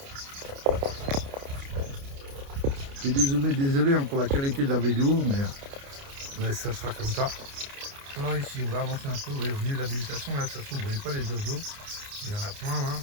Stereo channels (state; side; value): late; left; 29 ms